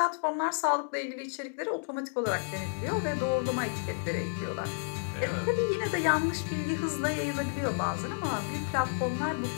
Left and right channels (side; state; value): right; silent; digital silence